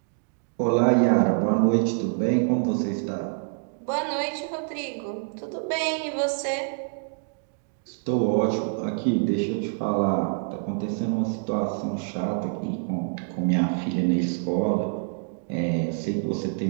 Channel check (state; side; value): silent; left; digital silence